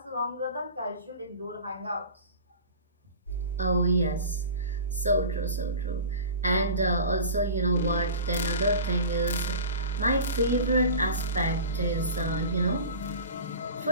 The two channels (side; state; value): both; inverted; correlation -0.36